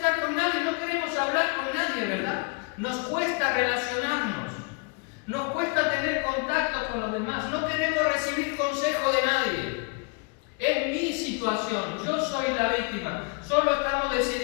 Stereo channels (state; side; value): quieter; right; 34.1 dB